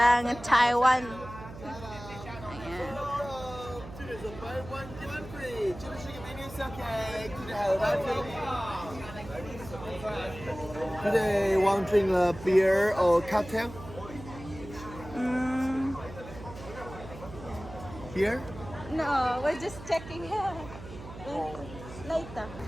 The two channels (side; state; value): right; noise; hum, 14 dB below the sound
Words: ang Taiwan. Ayan. Today, want to drink a beer or cocktail? Beer? No, we're just checking here. Later.